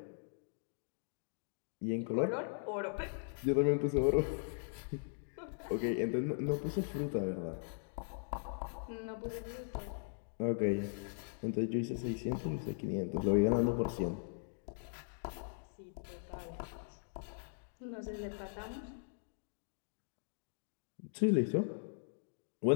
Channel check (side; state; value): right; silent; digital silence